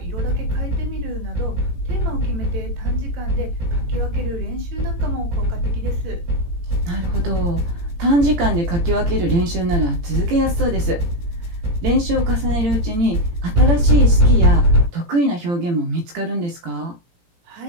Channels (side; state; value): left; late; 17 ms